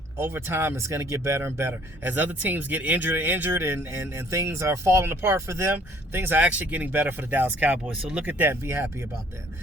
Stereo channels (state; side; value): normal; both; correlation 0.58